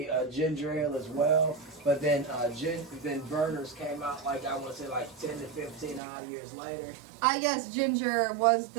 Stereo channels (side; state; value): left; drops out; at 6.0 s